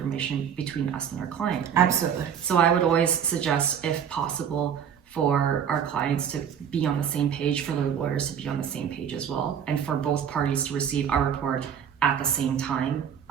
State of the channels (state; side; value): quieter; left; 8.2 dB